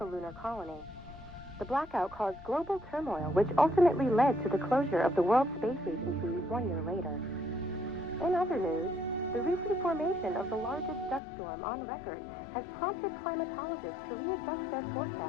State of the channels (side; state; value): right; drops out; at 11.2 s